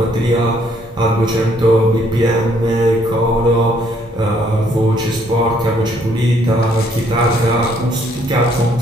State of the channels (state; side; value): normal; both; correlation 0.67